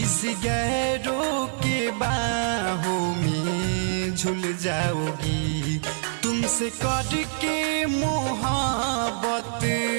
गैरों के बाहों में झूल जाओगी। तुमसे करके मोहब्बत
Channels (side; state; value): left; silent; digital silence